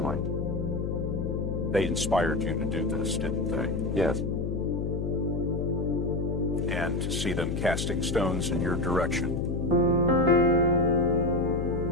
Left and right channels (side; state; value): left; noise; hum, 1 dB below the sound